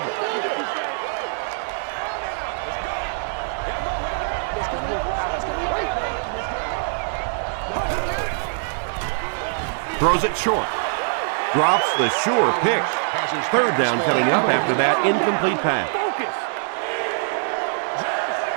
Throws it short. Drops the sure pick. Third down coming up after that incomplete pass.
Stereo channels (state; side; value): silent; left; digital silence